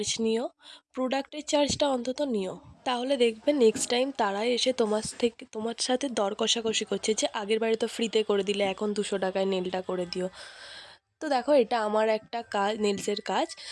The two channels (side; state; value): both; identical; correlation 1.00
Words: নিও, প্রোডাক্টের চার্জটা অন্তত নিও। তাহলে দেখবে নেক্সট টাইম তারাই এসে তোমার সাথে দর কষাকষি করছে যে আগের বারে তো ফ্রিতে করে দিলে, এখন 200 টাকায় নেলটা করে দিও। তো দেখো, এটা আমার একটা কাজ, নেলসের কাজ।